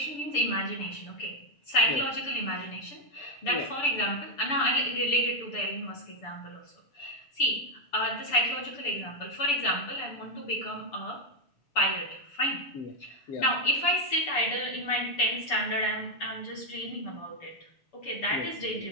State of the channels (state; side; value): late; right; 6.9 ms